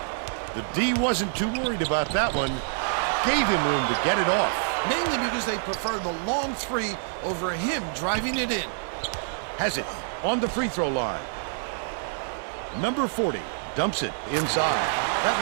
The D wasn't too worried about that one. Gave him room to get it off. Mainly because they prefer the long three over him driving it in. Has it on the free throw line. Number 40 dumps it inside. That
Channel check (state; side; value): silent; left; digital silence